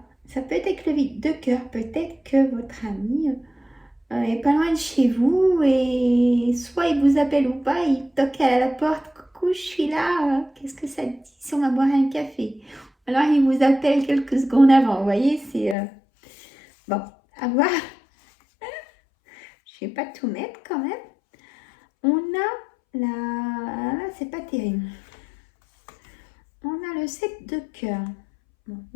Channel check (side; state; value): right; drops out; at 15.8 s